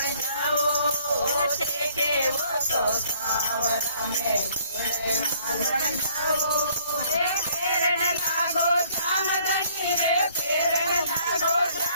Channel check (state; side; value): inverted; both; correlation -0.61